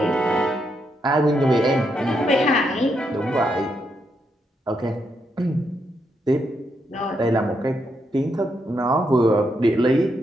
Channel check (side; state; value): both; normal; correlation 0.80